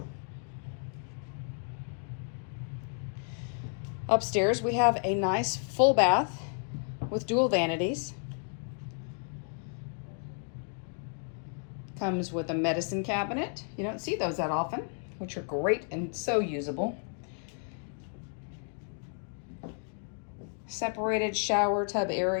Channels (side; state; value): right; silent; 56 dB below the other